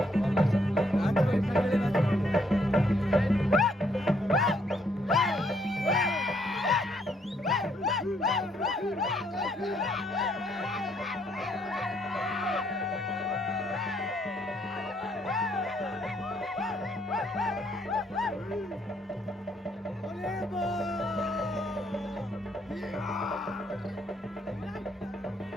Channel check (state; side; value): normal; both; correlation 0.71